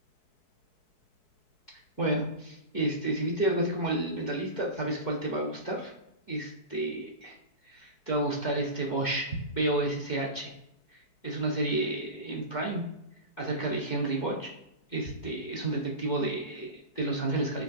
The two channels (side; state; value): right; late; 4.6 ms